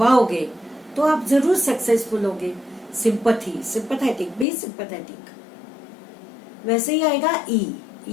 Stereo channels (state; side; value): drops out; right; at 4.5 s